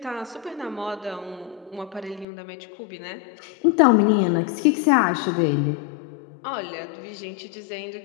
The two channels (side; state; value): right; drops out; at 2.2 s